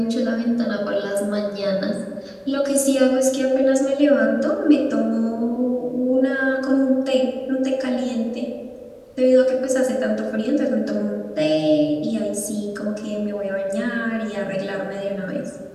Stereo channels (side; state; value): both; identical; correlation 1.00